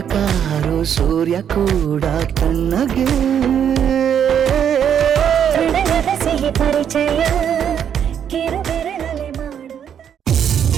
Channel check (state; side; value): quieter; left; 8.7 dB